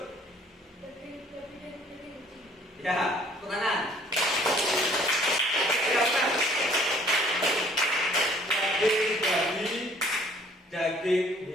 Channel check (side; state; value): both; normal; correlation 0.58